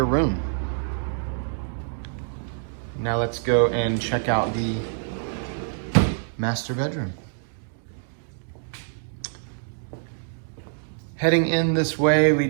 room. Now let's go and check out the master bedroom. Heading in this way, we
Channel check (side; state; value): left; silent; digital silence